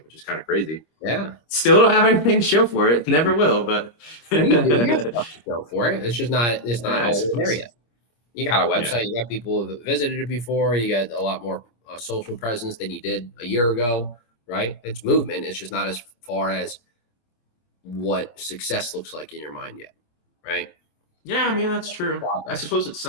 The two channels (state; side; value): late; right; 26 ms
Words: which is kind of crazy. Yeah. Still don't have anything to show for it. Never will, but you have stuff to show for it. It's not there yet. You got a website. You got people who visited it before. You got a lot more social presence than you did a year ago, right? It's movement. It's just not as far as what success looks like in your mind yet, right? Yeah, I mean, that's true. I suppose it's